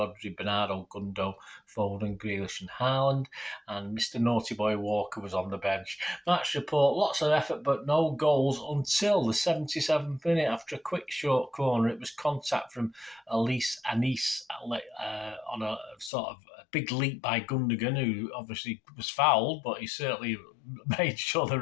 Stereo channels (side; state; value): right; drops out; at 16.1 s